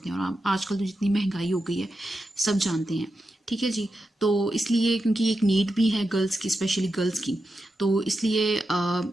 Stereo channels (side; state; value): both; normal; correlation 0.89